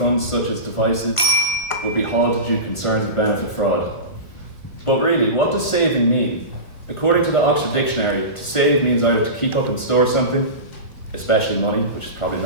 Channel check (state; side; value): late; right; 1.4 ms